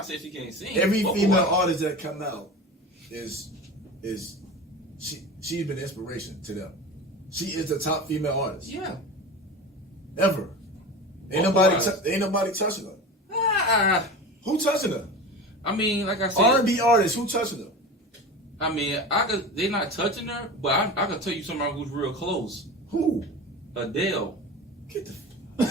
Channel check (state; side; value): normal; both; correlation 0.30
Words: saying she can't sing. Every Vocal female wise. artist that come out is she's been inspiration to them. She is the top female artist Yeah. ever. Ain't nobody touching her. Ah, Who touching her? I mean, like I said, R&B artists. Who touching her? I mean, they're not touching her, but I can tell you somebody who's real close. Who? Adele. Get